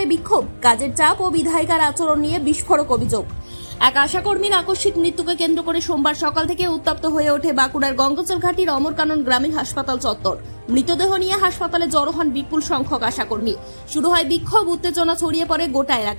বিক্ষোভ, কাজের চাপ ও বিধায়িকার আচরণ নিয়ে বিস্ফোরক অভিযোগ। এক আশাকর্মীর আকস্মিক মৃত্যুকে কেন্দ্র করে সোমবার সকাল থেকে উত্তপ্ত হয়ে ওঠে বাঁকুড়ার গঙ্গাচলঘাটির অমর কানন গ্রামীণ হাসপাতাল চত্বর। মৃতদেহ নিয়ে হাসপাতালে জড়ো হন বিপুল সংখ্যক আশাকর্মী। শুরু হয় বিক্ষোভ, উত্তেজনা ছড়িয়ে পড়ে গোটা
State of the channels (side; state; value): both; inverted; correlation -1.00